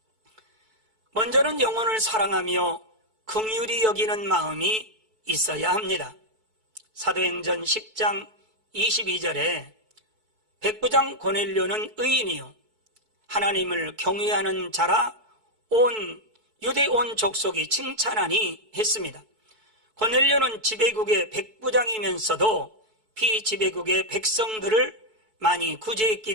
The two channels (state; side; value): late; left; 4.6 ms